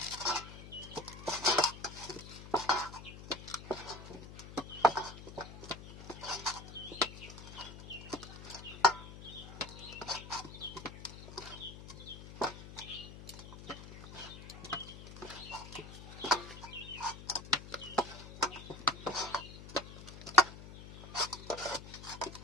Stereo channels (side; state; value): left; noise; hum, 13 dB below the sound